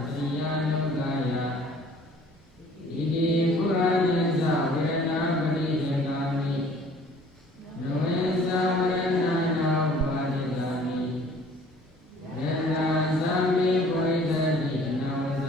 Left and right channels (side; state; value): both; normal; correlation 0.53